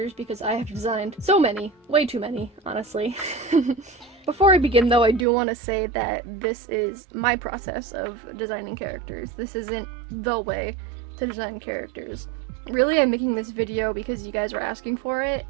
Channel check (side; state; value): left; drops out; at 5.2 s